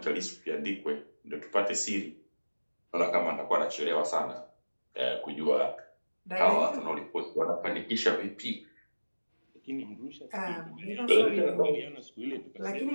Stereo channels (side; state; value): both; inverted; correlation -1.00